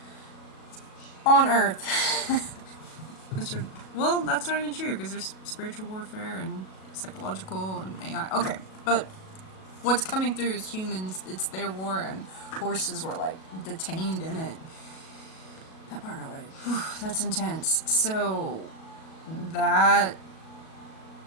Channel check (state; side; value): late; right; 37 ms